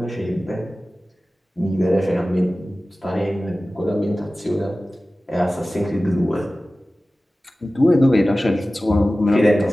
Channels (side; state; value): both; normal; correlation 0.96